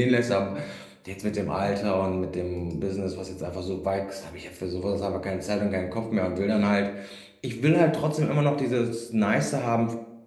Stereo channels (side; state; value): both; identical; correlation 1.00